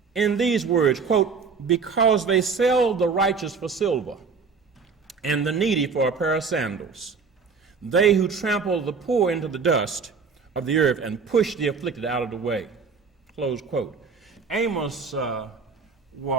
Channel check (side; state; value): left; quieter; 5.2 dB